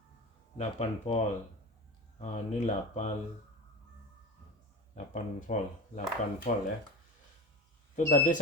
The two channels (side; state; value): both; normal; correlation 0.28